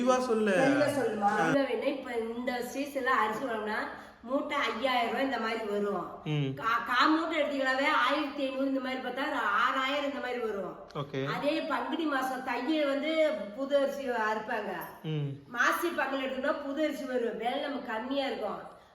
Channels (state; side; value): identical; both; correlation 1.00